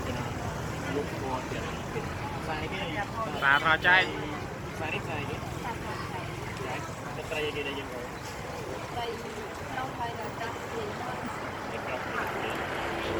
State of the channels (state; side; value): identical; both; correlation 1.00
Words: gonna look for the fish. Sai cái Và thò chay. sai cái. Right. Cái tray kia đây dân rồi. Đây đâu phải là cái gì.